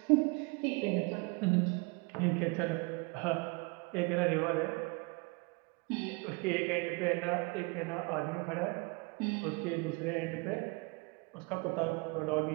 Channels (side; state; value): left; quieter; 29.2 dB